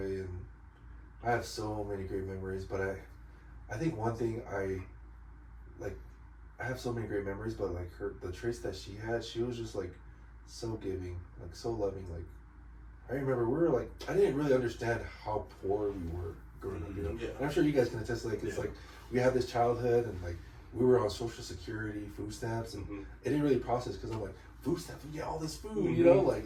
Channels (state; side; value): identical; both; correlation 1.00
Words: I have so many great memories. But I think one thing I have so many great memories, but like the traits that she had, she was just like so giving, like so loving. Like, I remember we were like, I didn't really understand how poor we were growing up, you know. Yeah. And I'm sure you guys can attest. Like, it's like we had this childhood, and like we were on Social Security, food stamps, and it didn't really process because I'm like, food stamps, we get all this food, you know.